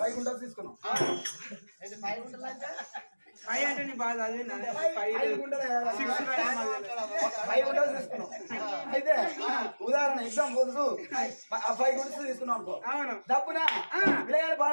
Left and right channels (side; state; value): both; inverted; correlation -1.00